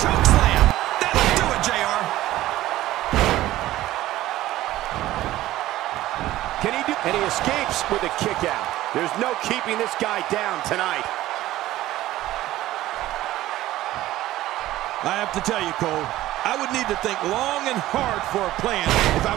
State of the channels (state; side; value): quieter; left; 15.4 dB